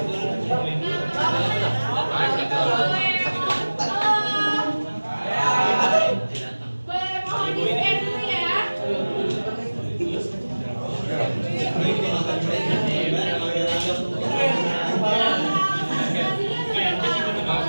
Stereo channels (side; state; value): both; inverted; correlation -1.00